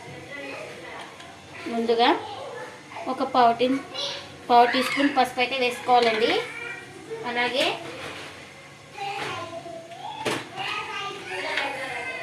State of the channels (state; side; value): identical; both; correlation 1.00